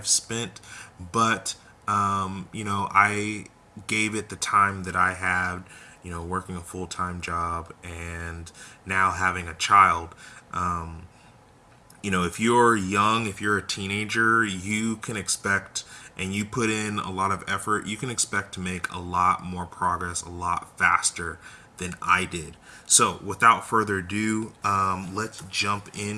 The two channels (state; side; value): identical; both; correlation 1.00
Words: spent, but I gave it the time that I had, working a full-time job and now having a child. If you're young, if you're a teenager, you can expect, and you put in a lot of effort, you can expect to make a lot more progress a lot faster than I did. So without further ado, let's jump